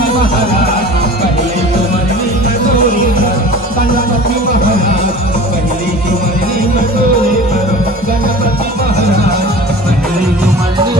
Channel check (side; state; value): both; normal; correlation 0.39